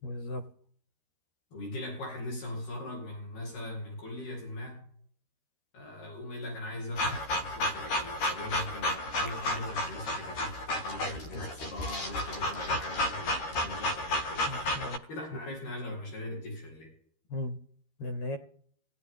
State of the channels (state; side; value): late; right; 13 ms